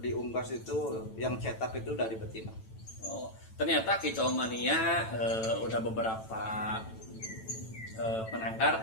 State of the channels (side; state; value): right; late; 9.0 ms